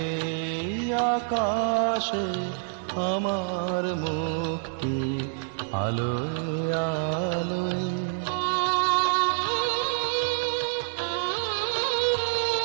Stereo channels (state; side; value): silent; left; digital silence